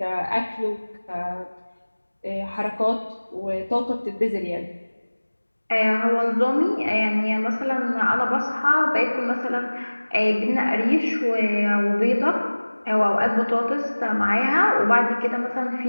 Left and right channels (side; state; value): both; inverted; correlation -1.00